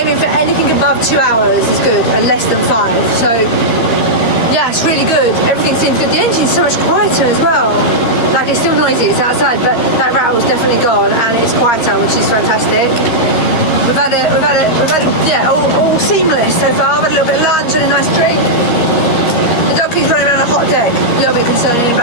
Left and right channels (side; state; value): right; late; 13 ms